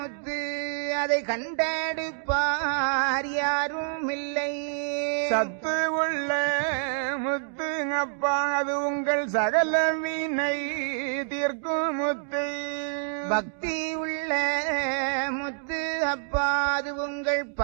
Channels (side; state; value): left; silent; digital silence